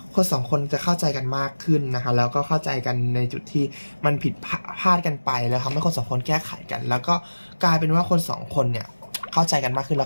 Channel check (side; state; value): both; inverted; correlation -1.00